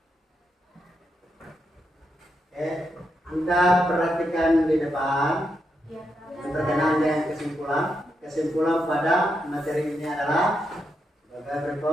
Anda perhatikan di depan berkenaan dengan kesimpulan. Kesimpulan pada materi ini adalah sebagai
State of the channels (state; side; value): normal; both; correlation 0.83